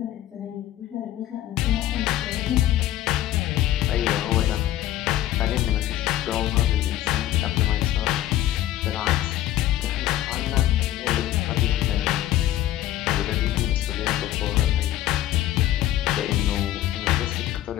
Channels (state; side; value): quieter; right; 13.5 dB